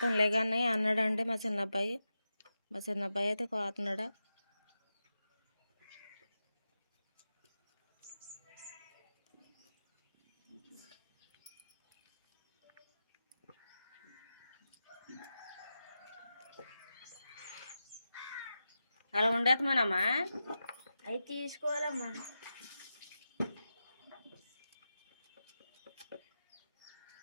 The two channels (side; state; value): both; inverted; correlation -0.91